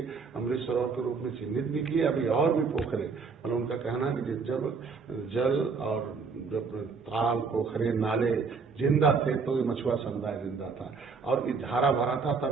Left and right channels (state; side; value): quieter; left; 5.0 dB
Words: अमृत सरोवर के रूप में चिन्हित भी किए। अभी और भी पोखरे, मतलब उनका कहना है कि जब जल और जब ताल, पोखरे, नाले जिंदा थे तो ये मछुआ समुदाय जिंदा था और हरा भरा था,